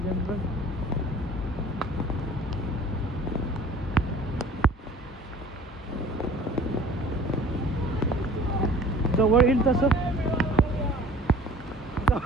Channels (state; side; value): normal; both; correlation 0.47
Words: जवळ येईल तसं